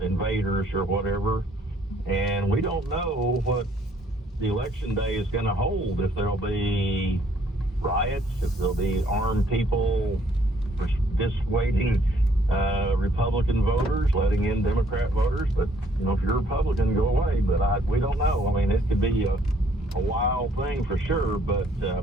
invaders or whatever. And we don't know what the election day is going to hold, if there'll be riots, if there'll be armed people dissuading Republican voters, letting in Democrat voters. But, if you're a Republican, go away. But we don't know. I mean, it could be a wild thing for sure. But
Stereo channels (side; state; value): both; normal; correlation 0.64